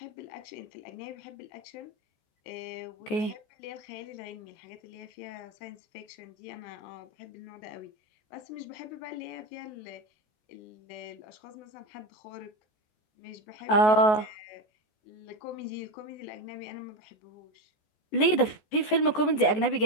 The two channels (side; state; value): right; late; 14 ms